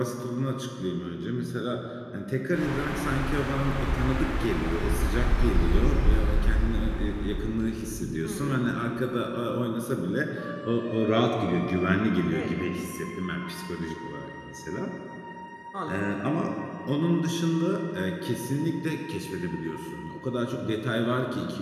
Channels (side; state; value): both; identical; correlation 1.00